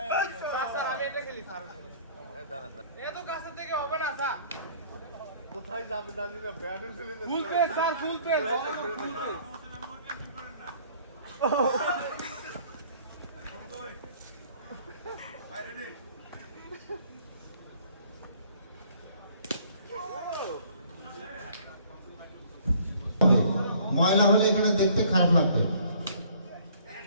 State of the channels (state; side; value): inverted; both; correlation -0.56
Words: স্যার আমি এটা খেলি স্যার। এত কাছে থেকে হবে না স্যার। কোথায় যাবে জানি না, ব্যাট ফেলে না। ফুল পেস স্যার, ফুল পেস। ফুল পেস। ময়লা হলে এখানে দেখতে খারাপ লাগবে।